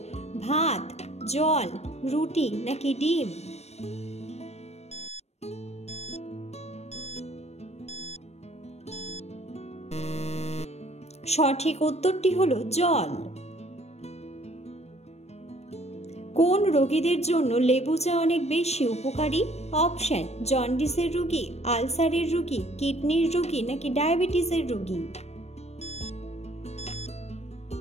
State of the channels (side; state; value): right; late; 0.31 ms